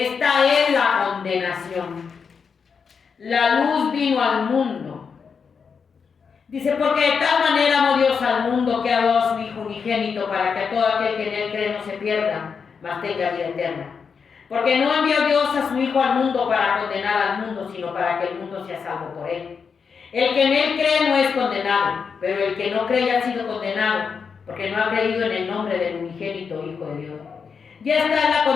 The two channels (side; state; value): right; quieter; 6.0 dB